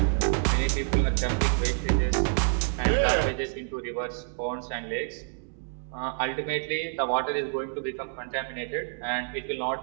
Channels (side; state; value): left; silent; digital silence